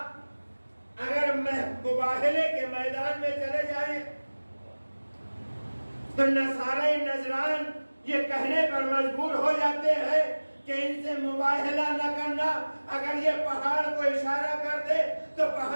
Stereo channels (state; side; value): inverted; both; correlation -1.00